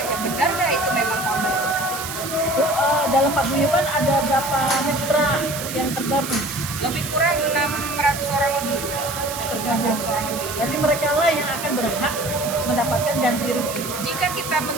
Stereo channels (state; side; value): noise; right; hiss, 8 dB below the sound